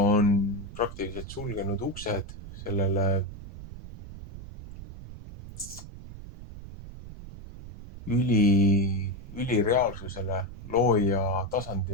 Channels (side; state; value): right; noise; rumble, 13 dB below the sound